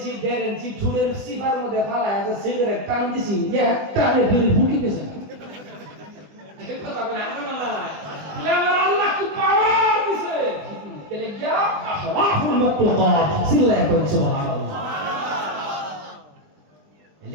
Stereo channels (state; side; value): late; left; 20 ms